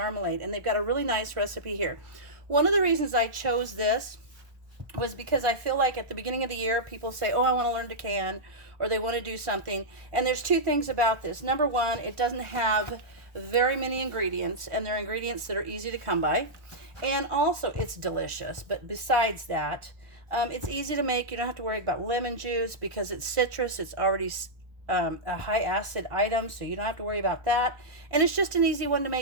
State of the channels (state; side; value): late; left; 1.4 ms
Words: and they've got a really nice recipe here. One of the reasons I chose this was because I feel like at the beginning of the year, people say, oh, I want to learn to can, or they want to do something. And there's two things about this. Number one, it doesn't have very many ingredients, and they're ingredients that are easy to come by. And also, it's delicious. But besides that, it's easy to make. You don't have to worry about lemon juice because it's citrus. It's already a high acid item, so you don't have to worry about that. And it's just an easy one to